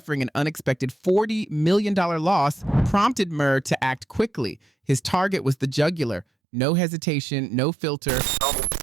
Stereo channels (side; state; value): left; drops out; at 6.2 s